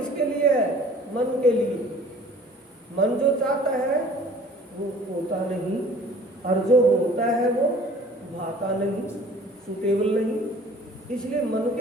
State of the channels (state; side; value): normal; both; correlation 0.50